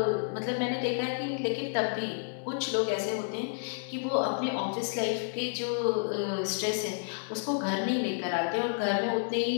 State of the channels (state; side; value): silent; right; digital silence